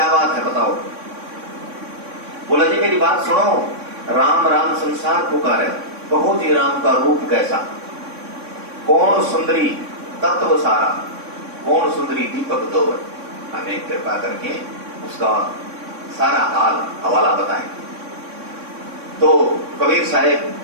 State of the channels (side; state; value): left; late; 3.6 ms